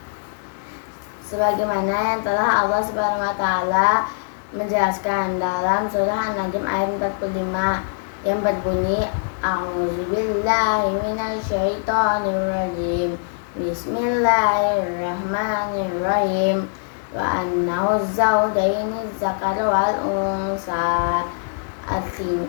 Sebagaimana yang telah Allah Subhanahu wa taala menjelaskan dalam surah An-Najm ayat 45 yang berbunyi A'udzubillahi minasyaitonirrajim. Bismillahirrahmanirrahim. Wa annahu zaujaini zakar wal unsa,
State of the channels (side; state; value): right; silent; digital silence